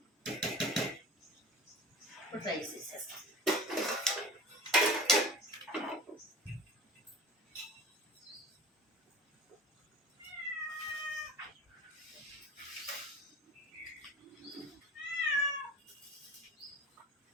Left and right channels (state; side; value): normal; both; correlation 0.38